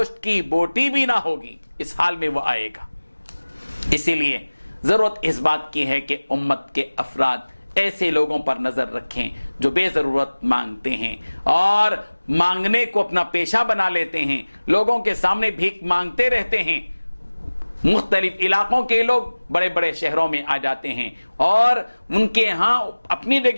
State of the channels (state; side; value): inverted; both; correlation -1.00